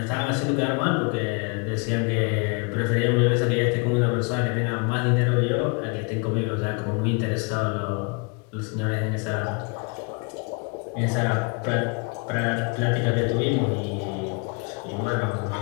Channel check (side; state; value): right; quieter; 31.9 dB